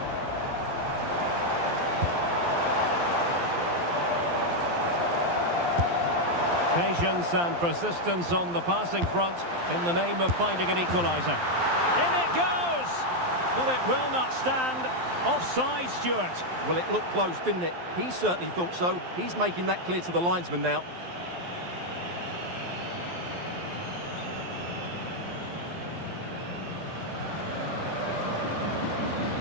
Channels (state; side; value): late; left; 12 ms